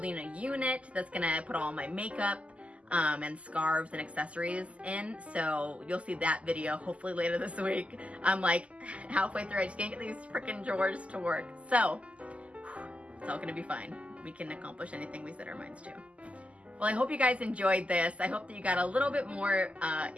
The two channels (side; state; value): left; late; 0.062 ms